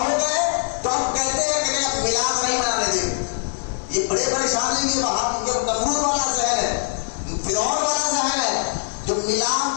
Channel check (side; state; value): right; silent; 64 dB below the other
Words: گئے تو ہم کہتے ہیں کہ نہیں میلاد نہیں منانے دیں. یہ بڑے پریشانی کے بعد یہ نمرود والا ذہن ہے، فرعون والا ذہن ہے، جو میلاد